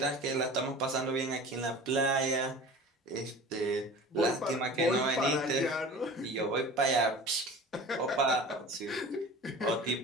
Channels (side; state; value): both; normal; correlation 0.39